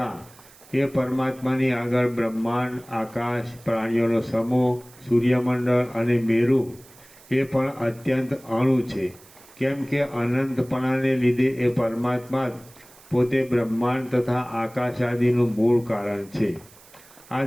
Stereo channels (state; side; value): noise; right; hiss, 24 dB below the sound